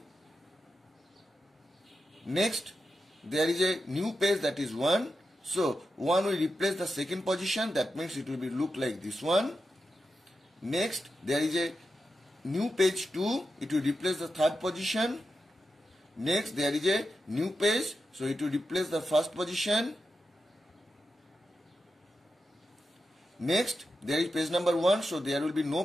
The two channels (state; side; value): normal; both; correlation 0.89